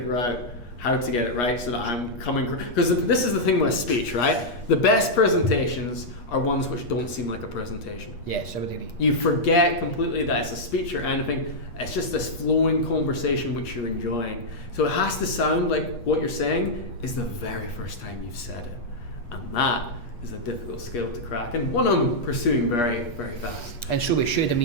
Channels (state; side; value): late; right; 8.4 ms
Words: out how to get it right so that I'm coming, because this is the thing with speech, right? The best presentations are ones which don't seem like a presentation. Yes, I would agree. You forget completely that it's a speech or anything. It's just this flowing conversation which you're enjoying. So it has to sound like what you're saying is the very first time you've said it. And that is a difficult skill to crack, and one I'm pursuing very, very fast. And so we should. I